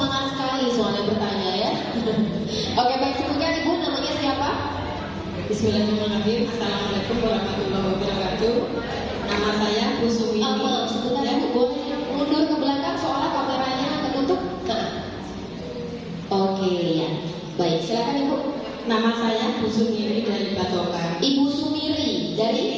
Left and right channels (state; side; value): identical; both; correlation 1.00